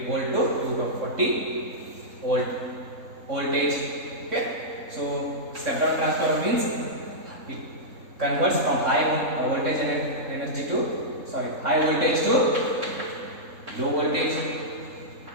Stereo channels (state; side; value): late; left; 3.7 ms